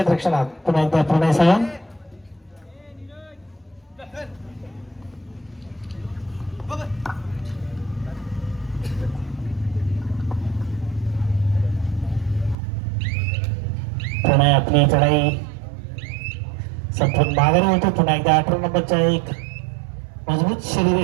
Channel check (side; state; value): left; drops out; at 12.6 s